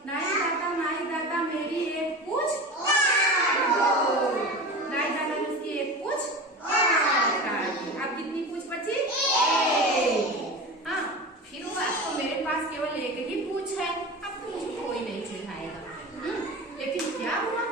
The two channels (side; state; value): both; normal; correlation 0.30